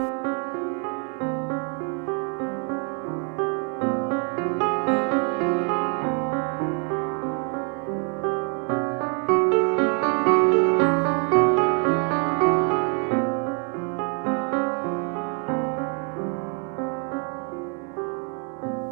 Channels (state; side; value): quieter; left; 38.0 dB